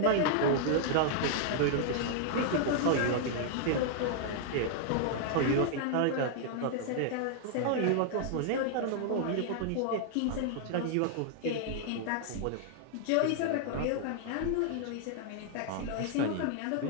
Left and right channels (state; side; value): different; both; correlation -0.01